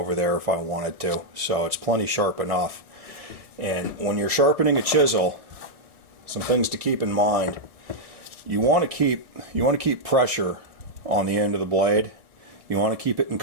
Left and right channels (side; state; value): left; late; 1.7 ms